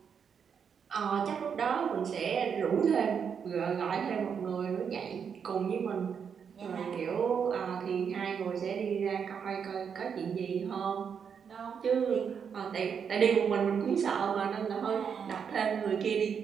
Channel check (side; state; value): left; quieter; 7.0 dB